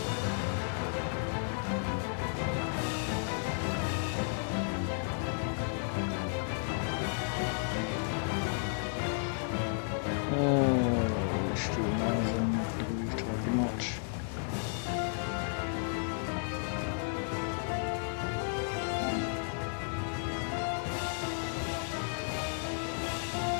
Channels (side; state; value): right; silent; 55 dB below the other